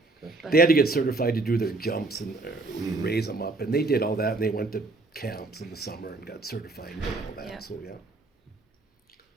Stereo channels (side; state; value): left; quieter; 3.3 dB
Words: but They had to get certified to do their jumps and we raise them up, and they did all that, and they went to camps in the summer and got certified and did all Yeah. that. So yeah.